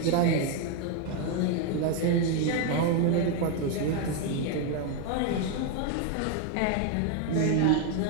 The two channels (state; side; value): different; both; correlation 0.01